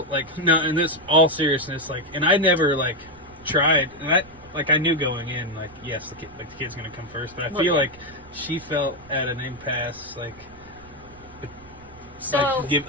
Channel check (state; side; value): noise; right; rumble, 23 dB below the sound